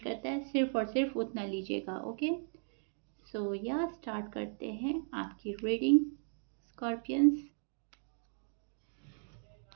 करता है सिर्फ और सिर्फ उतना लीजिएगा, ओके। सो या स्टार्ट करते हैं आपकी reading scorpions.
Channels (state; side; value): silent; left; 53 dB below the other